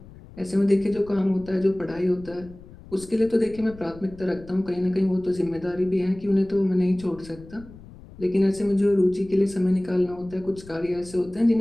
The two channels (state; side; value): noise; left; rumble, 19 dB below the sound